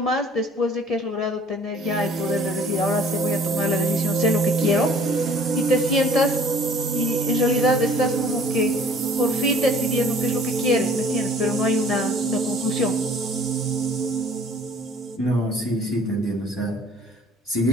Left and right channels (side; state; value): both; normal; correlation 0.53